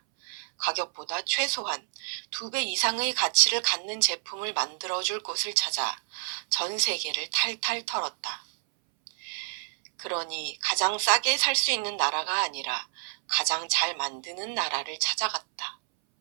가격보다 최소한 2배 이상의 가치를 갖는 제품을 만들어줄 곳을 찾아 전 세계를 탈탈 털었다. 그러니 가장 싸게 살 수 있는 나라가 아니라 가장 잘 만드는 나라를 찾아갔다.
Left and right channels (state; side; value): silent; left; 59 dB below the other